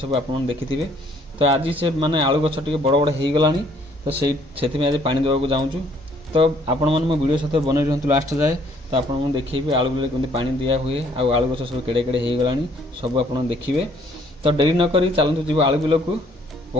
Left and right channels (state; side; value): normal; both; correlation 0.63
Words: आप देखिथे। तो आज से माने आलू गछ टे बड़ बड़ हो गलानी, तो से आज पानी देवाक जाऊँ। तो आपण मैंने मो वीडियो सहित बन रुहतु लास्ट जाए। तो आपको देखिए आलू बिल केमती पानी दिया हुए आलू गछ सब केड़े केड़े हो गलानी सब आप देखिए। तो डेरी नक चलतु जी आलू बिल को